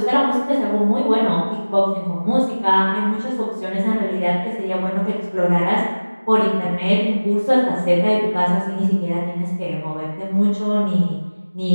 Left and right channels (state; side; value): inverted; both; correlation -1.00